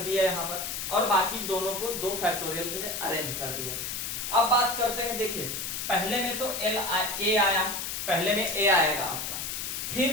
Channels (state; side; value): noise; left; hiss, 4 dB below the sound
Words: दिया यहां पर, और बाकी दोनों को 2 फैक्टोरियल से अरेंज कर दिया। अब बात करते हैं, देखिए पहले में तो ए आया, पहले में ए आएगा आपका,